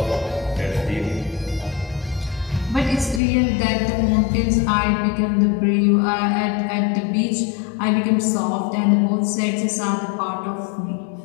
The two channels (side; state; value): right; drops out; at 3.2 s